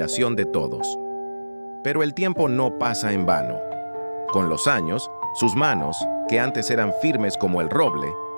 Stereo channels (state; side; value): inverted; both; correlation -1.00